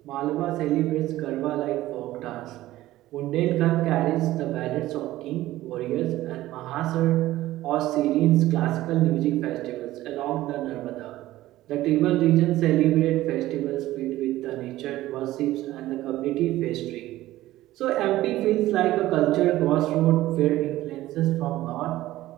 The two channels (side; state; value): left; quieter; 15.8 dB